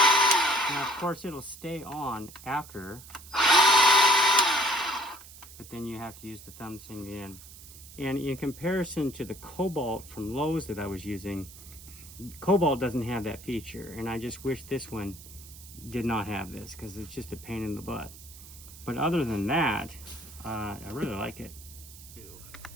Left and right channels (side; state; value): right; noise; hiss, 17 dB below the sound